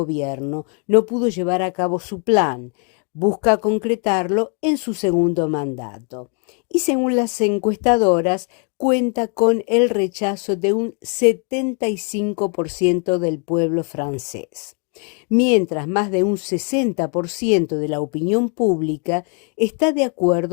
no pudo llevar a cabo su plan. Busca concretarlo en su segundo mandato. Y según las encuestadoras, cuenta con el rechazo de un 75% del pueblo francés, mientras más de un 60% de la opinión pública está de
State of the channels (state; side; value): quieter; right; 38.5 dB